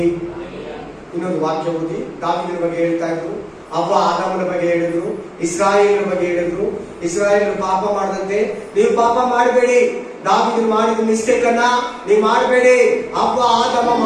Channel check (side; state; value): both; identical; correlation 1.00